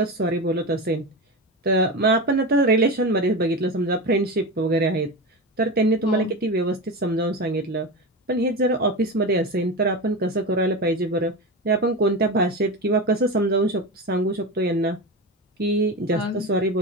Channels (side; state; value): both; normal; correlation 0.22